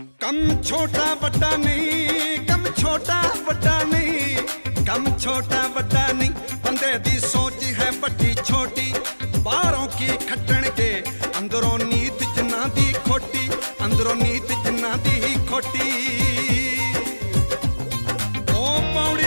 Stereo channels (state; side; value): inverted; both; correlation -1.00